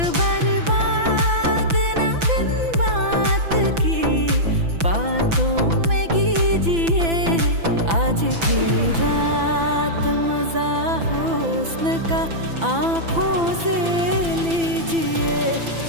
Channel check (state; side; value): late; left; 6.0 ms